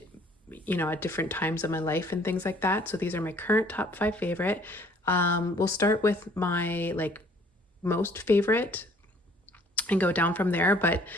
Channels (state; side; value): normal; both; correlation 0.58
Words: at different times of my life and things like that. So these are my current top 5 favorite. We'll start with my most favorite and go down from there. But